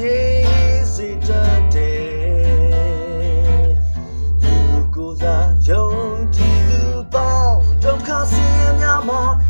ယ်စေတတ်တယ်သူကိုစားယုံကြည်သူပေါင်းဒုက္ခဆင်းရဲများမှာ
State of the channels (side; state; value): both; inverted; correlation -1.00